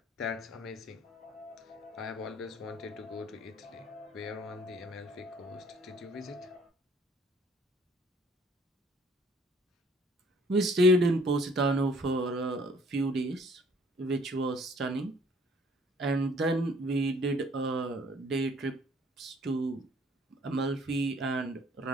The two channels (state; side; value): normal; both; correlation 0.59